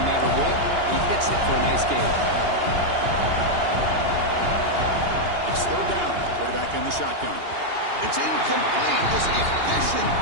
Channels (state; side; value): late; left; 2.8 ms